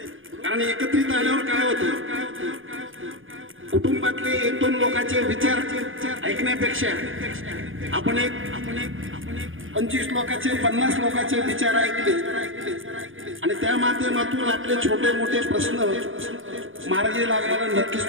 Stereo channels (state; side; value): late; left; 0.58 ms